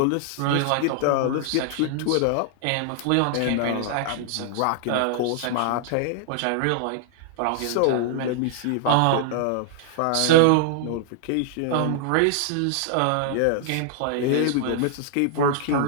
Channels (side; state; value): both; different; correlation 0.00